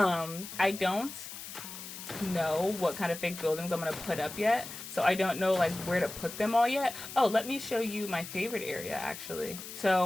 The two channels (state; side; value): noise; left; hiss, 11 dB below the sound